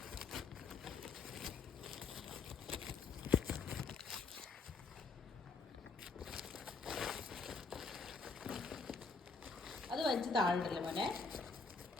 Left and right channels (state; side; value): quieter; right; 4.3 dB